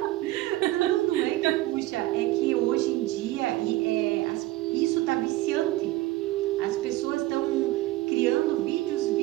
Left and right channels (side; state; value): left; quieter; 17.0 dB